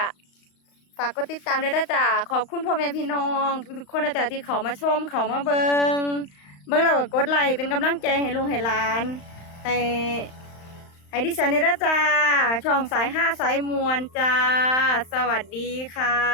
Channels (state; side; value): late; right; 35 ms